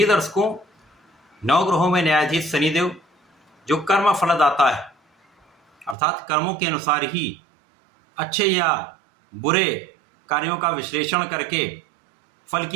दर्शकों, नवग्रहों में न्यायाधीश शनिदेव जो कर्म फलदाता है, अर्थात कर्मों के अनुसार ही अच्छे या बुरे कार्यों का विश्लेषण करके फल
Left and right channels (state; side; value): drops out; left; at 6.0 s